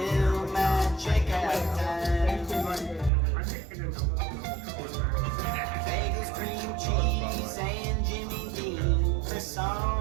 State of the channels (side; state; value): left; drops out; at 3.1 s